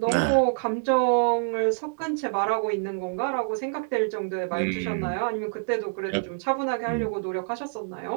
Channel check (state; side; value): silent; left; digital silence